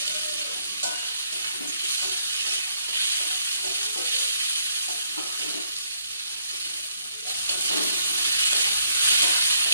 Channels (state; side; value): inverted; both; correlation -0.70